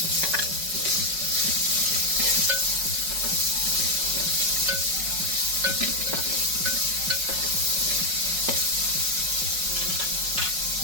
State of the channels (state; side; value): late; left; 5.4 ms